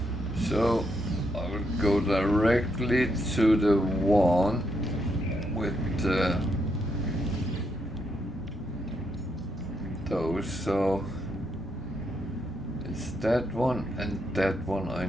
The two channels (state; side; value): normal; both; correlation 0.78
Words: So I will go directly to the one with those, so it's that one and that one I